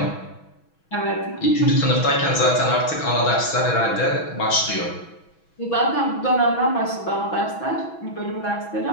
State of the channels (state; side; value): late; right; 6.1 ms